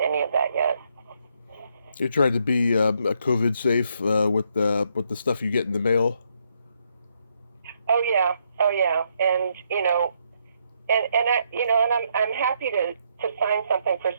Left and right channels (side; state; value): both; inverted; correlation -0.75